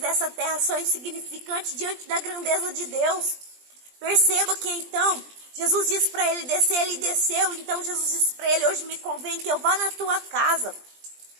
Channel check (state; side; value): late; left; 20 ms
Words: terra são insignificantes diante da grandeza de Deus. Perceba que então, Jesus disse para ele descer, ele desceu. Então Jesus disse para ele, hoje me convém que eu vá na tua casa.